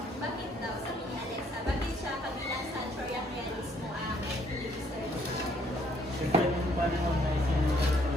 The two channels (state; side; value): normal; both; correlation 0.66